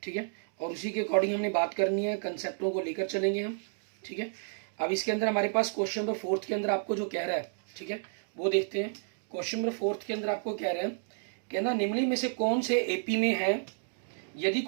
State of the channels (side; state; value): left; silent; digital silence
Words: ठीक है, और उसी के अकॉर्डिंग हमने बात करनी है, कंसेप्टों को लेकर चलेंगे हम। ठीक है, अब इसके अंदर हमारे पास क्वेश्चन नंबर 4 के अंदर आपको जो कह रहा है, ठीक है, वो देखते हैं। क्वेश्चन नंबर 4 के अंदर आपको कह रहे हैं, कहना निम्नलिखित में से कौन से एपी में है, यदि